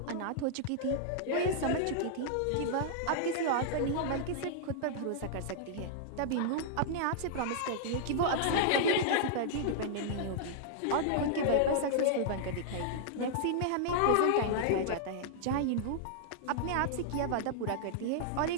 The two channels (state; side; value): different; both; correlation -0.01